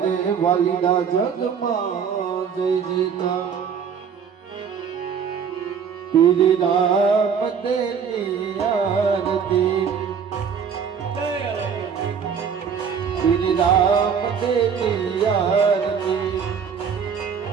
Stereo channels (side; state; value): left; quieter; 6.9 dB